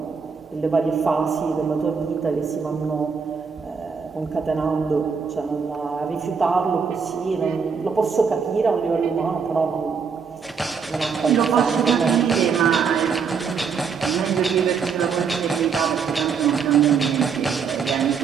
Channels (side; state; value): left; quieter; 5.9 dB